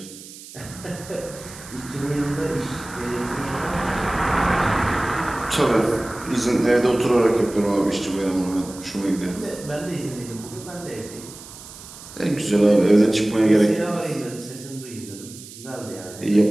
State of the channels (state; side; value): noise; right; hiss, 16 dB below the sound